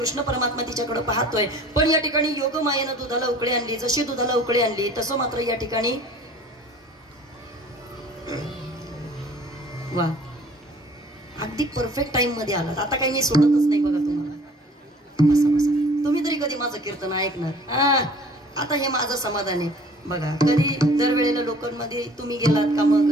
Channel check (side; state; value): both; normal; correlation 0.50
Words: परमात्मा तिच्याकडे पाहतोय. पण या ठिकाणी योगमायेनं दुधाला उकळी आणली. जशी दुधाला उकळी आणली तसं मात्र या ठिकाणी वा अगदी परफेक्ट टाइम मध्ये आलात. आता काही मी सोडतच नाही बघा तुम्हाला. बसा बसा. तुम्ही तरी कधी माझं कीर्तन ऐकणार? आता हे माझं समाधान आहे. बघा कधी दरवेळेला लोकांमध्ये तुम्ही गेलात का मग